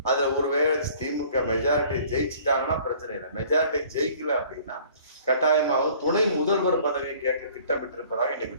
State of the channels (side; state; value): both; inverted; correlation -0.53